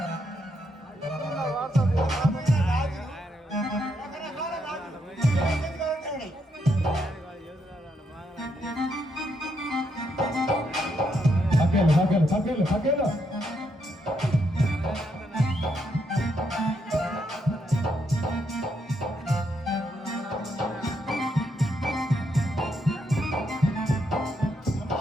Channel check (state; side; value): normal; both; correlation 0.78